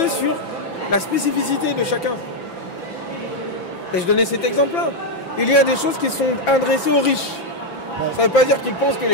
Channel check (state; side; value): late; right; 5.9 ms